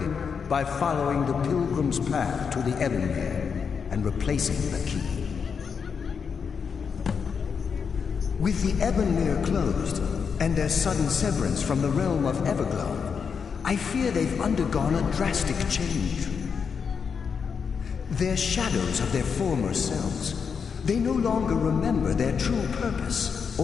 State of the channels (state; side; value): quieter; right; 6.2 dB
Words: by following the Pilgrim's path to the Ebonmere and replacing the key. With the Ebonmere closed, and their sudden severance from the realm of Everglow, I fear they've undergone a drastic change. They're shadows of their former selves. They no longer remember their true purpose